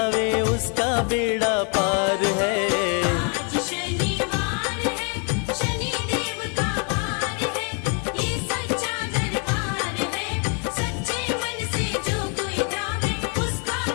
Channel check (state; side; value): quieter; right; 39.0 dB